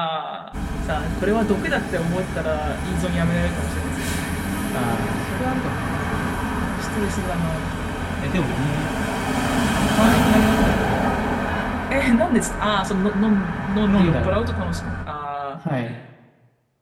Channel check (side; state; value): both; identical; correlation 1.00